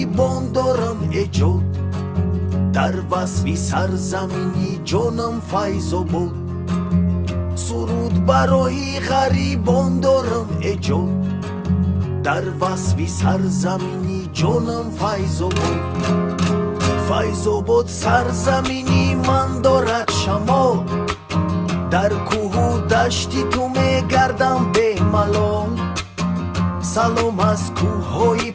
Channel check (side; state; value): both; identical; correlation 1.00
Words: дорам эҷод дар васфи сарзамини ҷонам файзобод суруд барои ғарибон дорам эҷод дар васфи сарзамини ҷонам файзобод файзобод сарзамини ман дорад шамол дар кӯҳу дашти ту мегардам бемалол салом аз кӯҳҳои